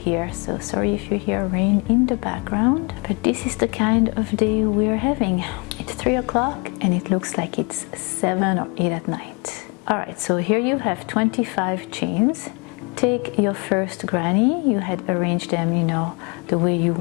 so sorry if you hear rain in the background, but this is the kind of day we're having. It's 3 o'clock and it looks like it's 7 or 8 at night. Alright, so here you have 25 chains. Take your first granny, you had arranged them, you know, the way you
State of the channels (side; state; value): right; quieter; 31.1 dB